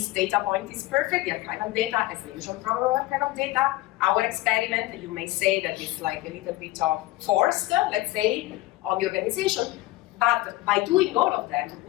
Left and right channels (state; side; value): quieter; right; 18.4 dB